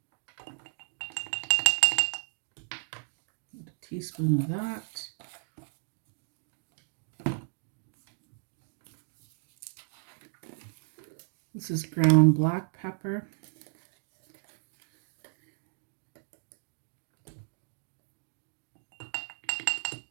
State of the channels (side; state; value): left; silent; digital silence